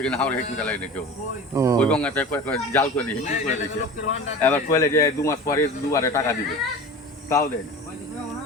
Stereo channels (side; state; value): both; normal; correlation 0.35